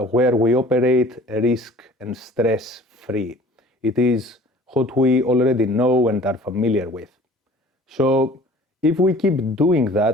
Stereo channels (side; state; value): both; normal; correlation 0.48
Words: where we operate risk and stress free. It is what we already know and are familiar with. So if we keep doing